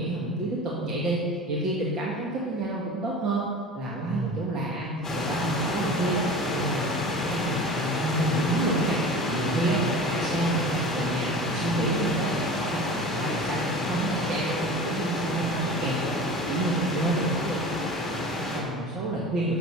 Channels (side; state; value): both; normal; correlation 0.36